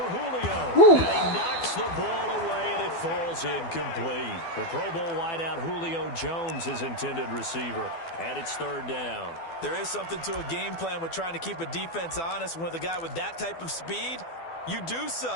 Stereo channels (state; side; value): late; right; 12 ms